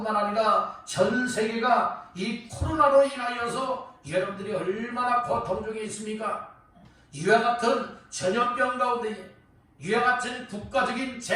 아니라 전 세계가 이 코로나로 인하여서 여러분들이 얼마나 고통 중에 있습니까? 이와 같은 전염병 가운데, 이와 같은 국가적인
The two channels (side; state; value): both; identical; correlation 1.00